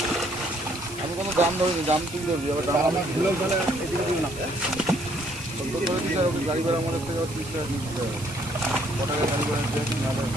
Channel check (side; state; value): right; noise; hiss, 15 dB below the sound